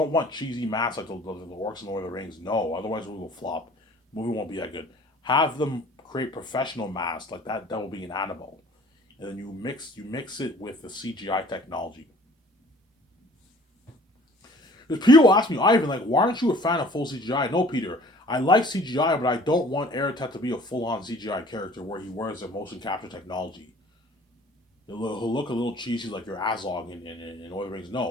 want cheesy masks like the orcs in Lord of the Rings. No, otherwise we will flop. The movie won't be that good. Have them create professional masks like that Devil being an animal, and then you mix it with the CGI technology. Because people ask me, Ivan, like, why aren't you a fan of full CGI? No, Peter, I like CGI, but I don't want Eretet to be a full-on CGI character where he wears the motion capture technology. He'll look a little cheesy like your Azog in Lord of the Rings.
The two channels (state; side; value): normal; both; correlation 0.51